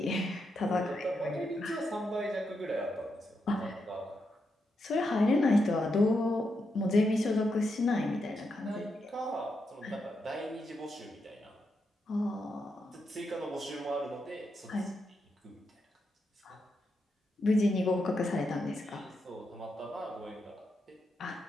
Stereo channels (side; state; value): both; normal; correlation 0.84